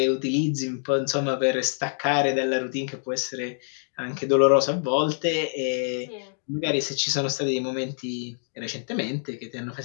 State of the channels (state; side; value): silent; right; digital silence